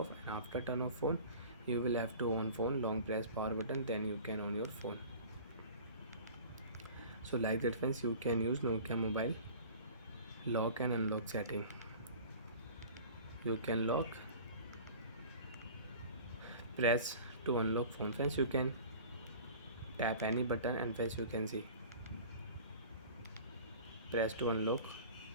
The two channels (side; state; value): both; inverted; correlation -0.42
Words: and after turn off phone, you will have to on phone, long press power button, then you can on your phone. So like that friends, you can use Nokia mobile lock and unlock setting. You can lock, press to unlock phone. Friends, you can tap any button and friends you can see press to unlock